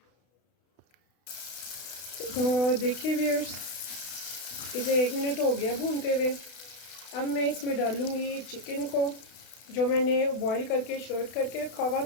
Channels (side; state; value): right; late; 32 ms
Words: तो देखिए व्यूअर्स, इसे 1 मिनट हो गया भूनते हुए। अब मैं इसमें डालूँगी चिकन को जो मैंने बॉईल करके शर्ट करके रखा हुआ